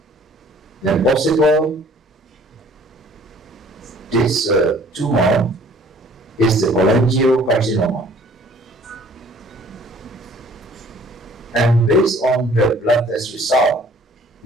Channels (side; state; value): both; normal; correlation 0.54